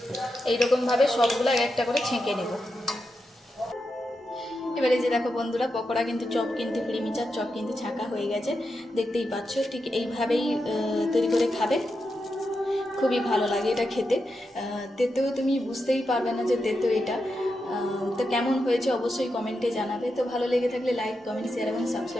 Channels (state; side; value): normal; both; correlation 0.87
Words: এইরকমভাবে সবগুলো এক একটা করে ছেঁকে নেব। এবারে যে দেখো বন্ধুরা, পকোড়া কিন্তু চপ কিন্তু প্রিমিচার চপ কিন্তু ছাঁকা হয়ে গেছে, দেখতেই পাচ্ছ। ঠিক এইভাবেই তৈরি করে খাবে, খুবই ভালো লাগে এটা খেতে। তেতেও তুমি বুঝতেই পারবে না যে তেতো এটা। তো কেমন হয়েছে অবশ্যই কমেন্টে জানাবে। তো ভালো লেগে থাকলে লাইক, কমেন্ট, শেয়ার এবং